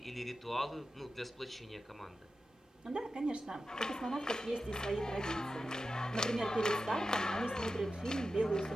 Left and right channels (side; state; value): both; normal; correlation 0.92